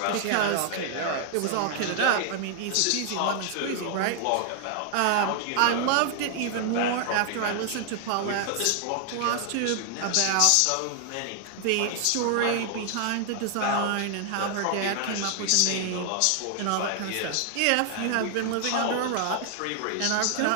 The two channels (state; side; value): different; both; correlation 0.00